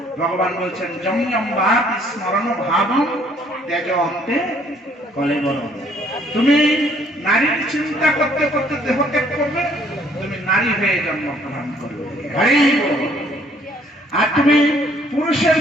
ভগবান বলছেন যম্যম্বাতি স্মরণ ভাবম ত্যাজ অন্তে কলেবরম। তুমি নারীর চিন্তা করতে করতে দেহ ত্যাগ করবে, তুমি নারী হয়ে জন্মগ্রহণ করবে। আর তুমি পুরুষের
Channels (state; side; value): normal; both; correlation 0.62